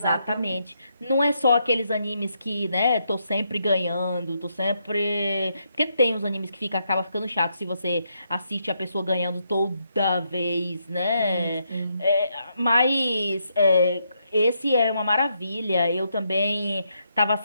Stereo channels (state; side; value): inverted; both; correlation -0.78